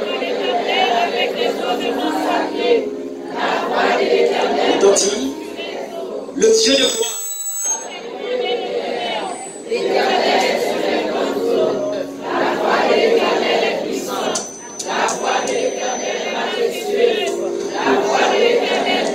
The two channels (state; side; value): identical; both; correlation 1.00